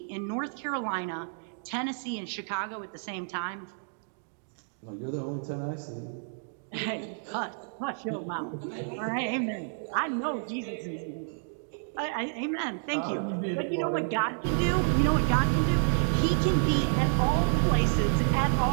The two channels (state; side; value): silent; left; digital silence